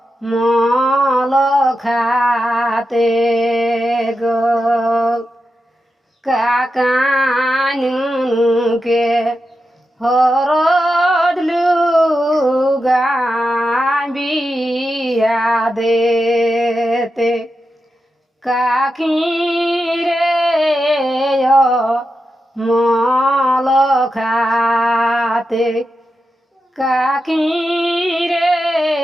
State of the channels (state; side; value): normal; both; correlation 0.89